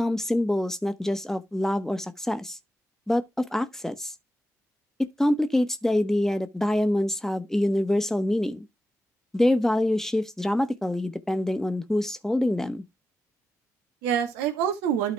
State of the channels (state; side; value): normal; both; correlation 0.90